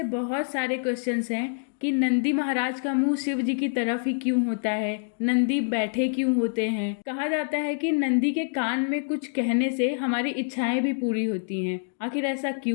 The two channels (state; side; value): silent; right; digital silence